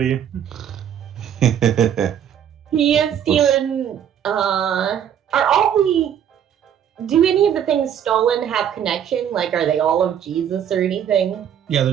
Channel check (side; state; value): left; quieter; 9.3 dB